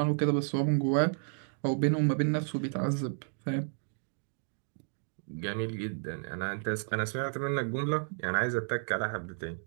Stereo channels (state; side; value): silent; left; digital silence